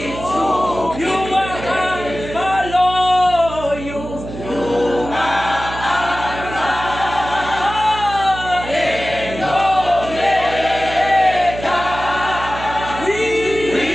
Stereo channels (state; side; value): noise; right; hum, 10 dB below the sound